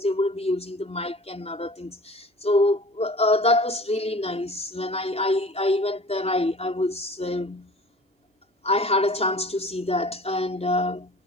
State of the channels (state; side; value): normal; both; correlation 0.44